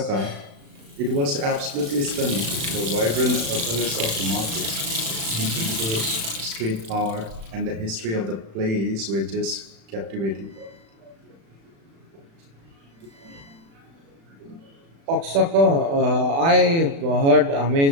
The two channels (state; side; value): late; left; 36 ms